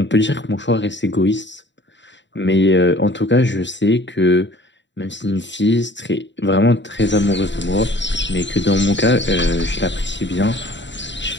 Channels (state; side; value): late; right; 0.53 ms